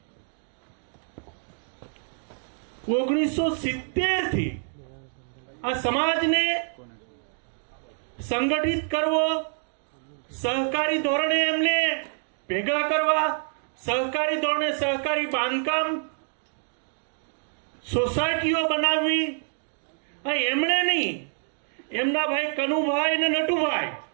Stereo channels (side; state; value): left; silent; digital silence